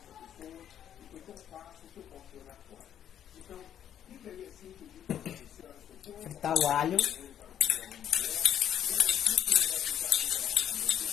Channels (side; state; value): right; quieter; 9.9 dB